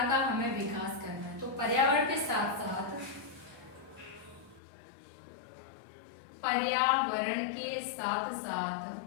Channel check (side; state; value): right; drops out; at 4.6 s